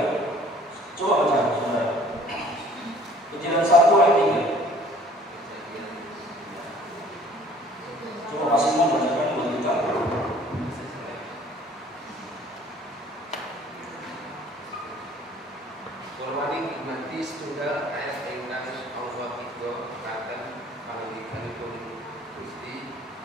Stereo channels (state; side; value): normal; both; correlation 0.53